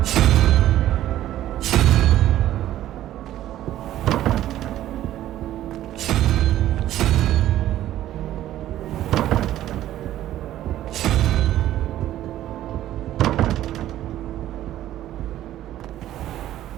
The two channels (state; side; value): quieter; left; 13.2 dB